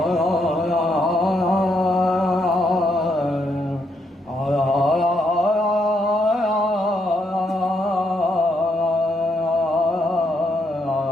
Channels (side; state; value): both; normal; correlation 0.76